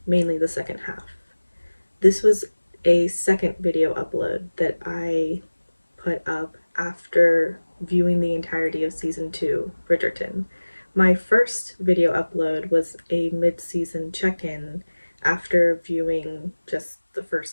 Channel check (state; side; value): inverted; both; correlation -1.00